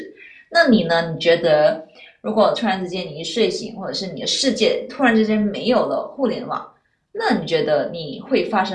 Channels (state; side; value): identical; both; correlation 1.00